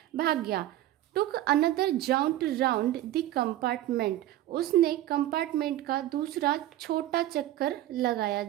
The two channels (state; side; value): quieter; left; 14.0 dB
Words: भाग गया। Took another jaunt round the compartment, उसने कंपार्टमेंट का दूसरा छोटा चक्कर लगाया।